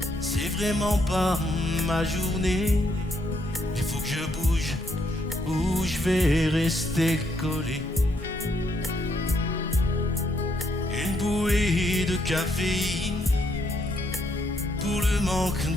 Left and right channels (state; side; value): normal; both; correlation 0.74